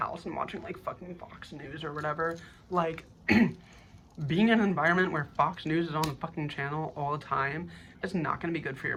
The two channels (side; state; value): both; identical; correlation 1.00